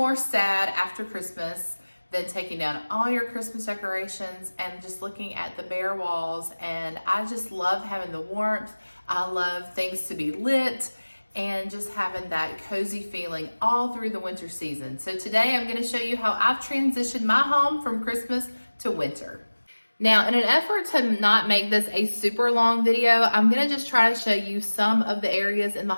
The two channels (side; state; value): both; inverted; correlation -1.00